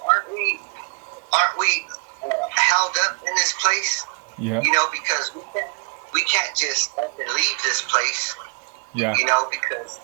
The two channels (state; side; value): quieter; left; 33.4 dB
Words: aren't we held up in this place? Yeah. Because we can't just up and leave this place. Yeah. Because